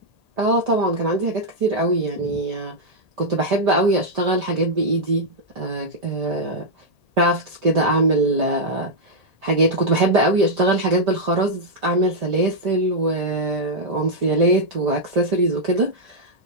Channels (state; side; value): late; left; 1.8 ms